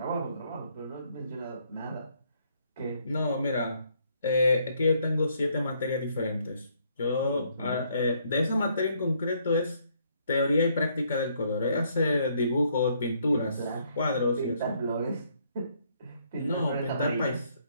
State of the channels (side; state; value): both; inverted; correlation -0.69